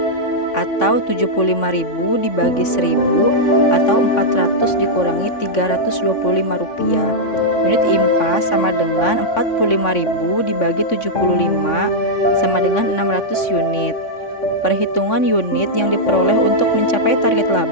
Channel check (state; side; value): late; right; 3.5 ms